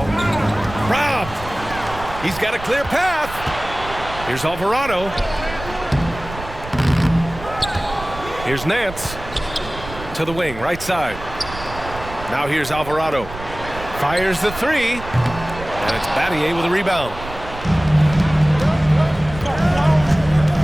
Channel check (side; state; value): right; noise; rumble, 13 dB below the sound